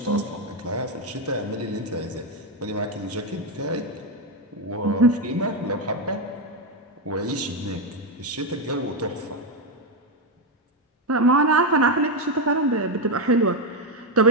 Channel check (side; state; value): both; normal; correlation 0.06